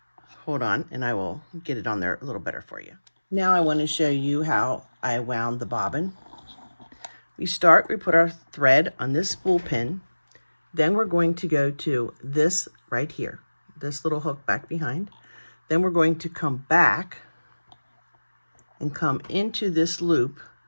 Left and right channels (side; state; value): both; inverted; correlation -1.00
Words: Hold on, and I will get it on there a little better for you. Now I want to show you how I wound the bobbin. We put our thread on this spool pin. Then we're going to go to this right here, this little hook back behind. Then we're going to come back and come into this loop